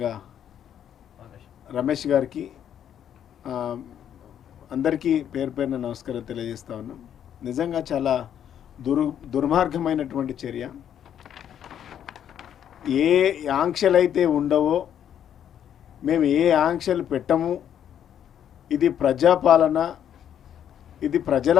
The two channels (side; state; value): right; quieter; 9.6 dB